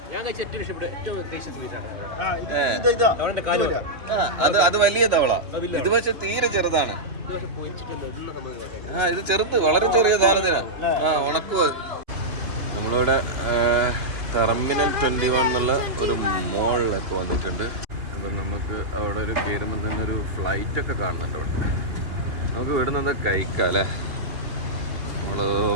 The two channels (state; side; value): late; left; 2.8 ms